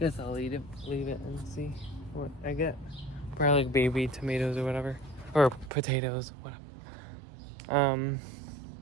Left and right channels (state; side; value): drops out; left; at 5.7 s